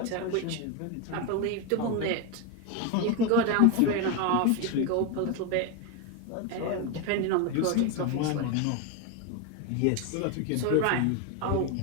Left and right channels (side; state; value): both; different; correlation 0.02